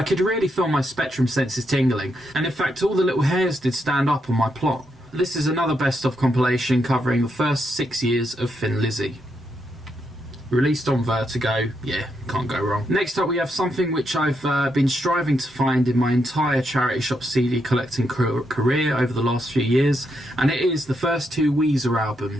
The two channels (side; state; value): both; normal; correlation 0.80